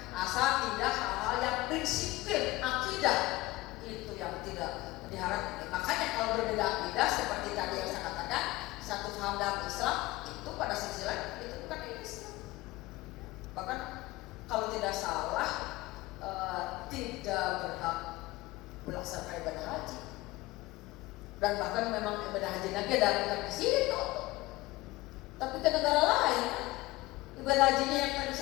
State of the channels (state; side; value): quieter; right; 19.2 dB